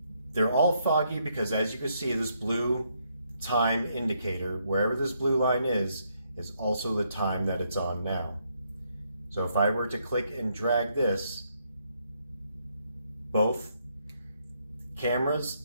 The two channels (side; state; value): both; inverted; correlation -0.74